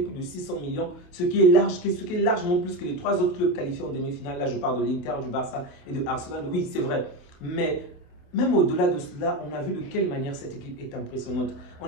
plus de 600 millions, ce qui est largement plus que les 3 autres clubs qualifiés en demi-finale. Là, je parle de l'Inter, du Barça et de Arsenal. Oui, c'est vrai. Mais même au-delà de cela, on a vu de quelle manière cette équipe est impressionnante.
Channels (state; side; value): late; right; 28 ms